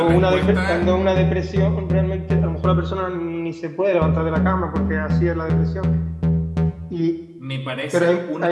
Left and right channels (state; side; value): identical; both; correlation 1.00